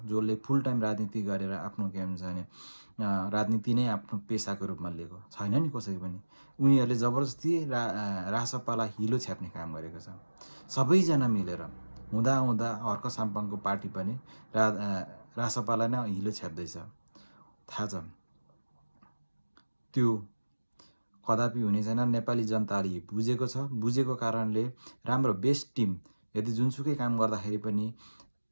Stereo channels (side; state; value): both; inverted; correlation -1.00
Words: जसले फुल टाइम राजनीति गरेर आफ्नो के हुन्छ भने राजनीति नै आफ्नो पेसाको रूपमा लिएको छैन नि कसै पनि। उनीहरूले जबरजस्ती रासपालाई हिलो छ्याप्ने काम गरेको छ। सबैजना मिलेर हुँदा हर्क साम्पाङको पार्टी पनि रासपालाई नै हिलो छ्याप्दैछ, थाहा छ। त्यो कदापि हुने छैन। नेपाली जनताले बुझेको छ। बुझेको कारणले राम्रो बेस्ट टिम यदि जुनसुकै काम गर्दाखेरि पनि